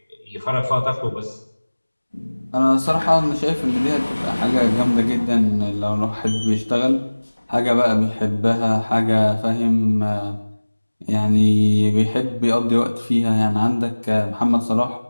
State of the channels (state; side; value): inverted; both; correlation -1.00